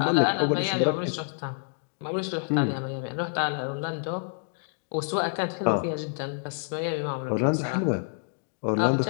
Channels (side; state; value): right; silent; digital silence